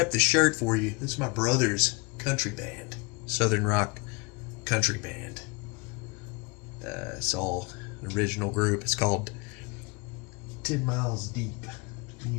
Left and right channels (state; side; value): quieter; right; 28.8 dB